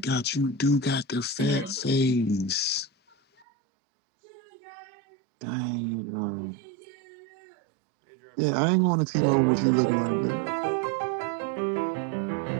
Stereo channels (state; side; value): drops out; left; at 3.5 s